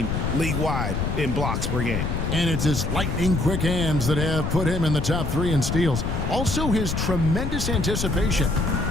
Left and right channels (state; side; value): noise; left; rumble, 1 dB below the sound